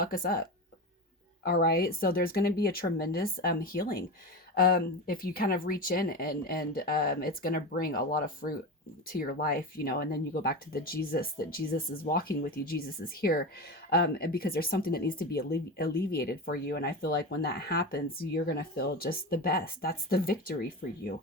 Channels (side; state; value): both; normal; correlation 0.23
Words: us up. All right. So there's going to be a tremendous healing. If you kind of reach in, and it's going to bring a lot of fruit to your life, you know, and then you go back to the Jesus, that Jesus is walking with you. Jesus is here. And because there's something that needs to be alleviated for you. And I feel like when that happens, you're going to feel just the best. That's the victory for you.